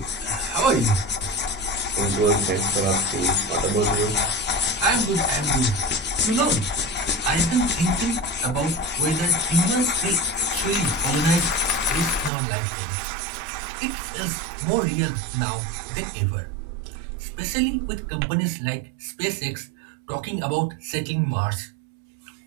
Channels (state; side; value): drops out; left; at 12.3 s